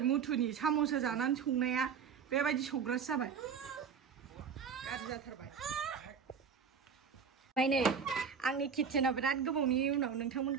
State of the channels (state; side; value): quieter; left; 6.6 dB